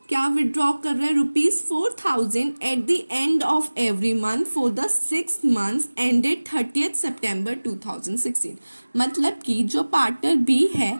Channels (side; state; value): both; inverted; correlation -1.00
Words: क्या विड्रॉ कर रहा है? ₹4,000 eight the end of every month for the 6 months ended 30th सितंबर 2016। मतलब कि जो पार्टनर बी है